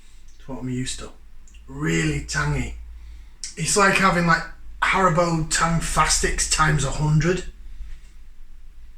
to what I'm used to. Really tangy. It's like having like Haribo Tang Fastics times 100.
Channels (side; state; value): both; identical; correlation 1.00